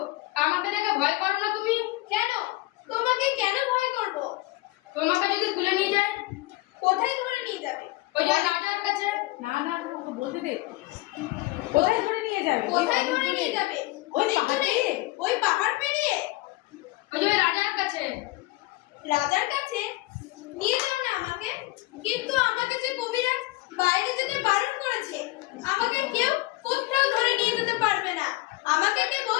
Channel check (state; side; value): quieter; right; 19.9 dB